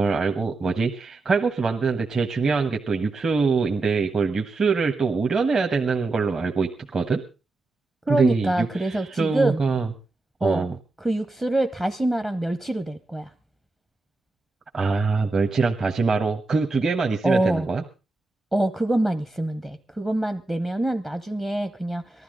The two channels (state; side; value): quieter; left; 3.3 dB